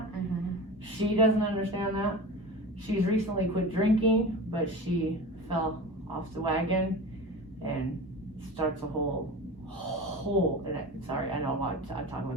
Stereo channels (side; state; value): both; normal; correlation 0.32